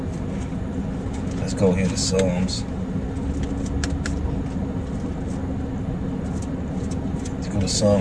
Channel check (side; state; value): both; identical; correlation 1.00